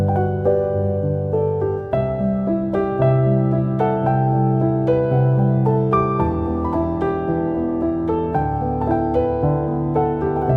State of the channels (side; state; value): both; identical; correlation 1.00